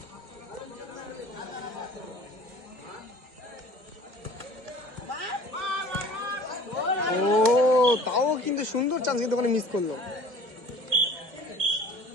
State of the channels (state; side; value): late; left; 2.3 ms